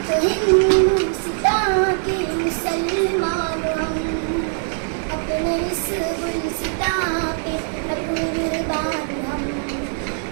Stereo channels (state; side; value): silent; left; digital silence